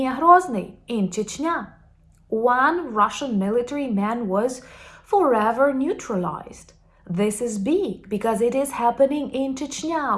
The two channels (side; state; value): both; identical; correlation 1.00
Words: Grozny in Chechnya. One Russian military man was forever neutralized. This is big because it is happening in Chechnya,